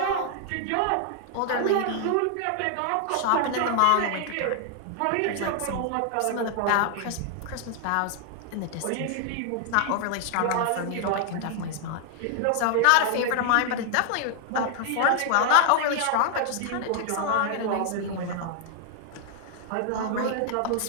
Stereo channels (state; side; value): different; both; correlation 0.00